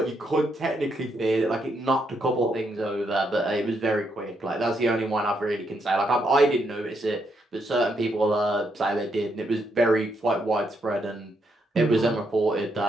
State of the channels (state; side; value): normal; both; correlation 0.78